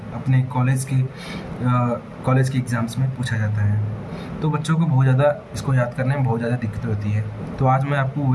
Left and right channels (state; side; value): identical; both; correlation 1.00